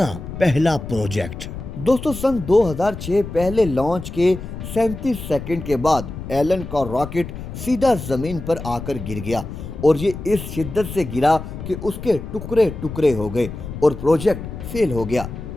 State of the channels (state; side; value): noise; left; rumble, 9 dB below the sound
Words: पहला प्रोजेक्ट। दोस्तों, सन 2006 पहले लॉन्च के 37 सेकंड के बाद एलन का रॉकेट सीधा जमीन पर आकर गिर गया और ये इस शिद्दत से गिरा कि उसके टुकड़े टुकड़े हो गए और प्रोजेक्ट फेल हो गया।